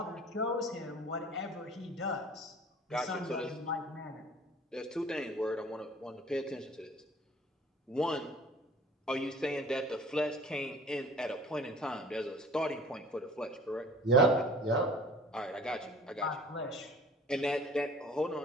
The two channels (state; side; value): normal; both; correlation 0.48